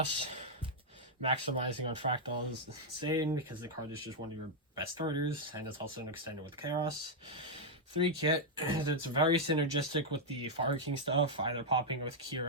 Maximizing on Fractal is insane because the card is just one of your best starters, and it's also an extender with Chaos. 3 Kit, it's very synergistic with the Fire King stuff, either popping with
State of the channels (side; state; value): both; normal; correlation -0.02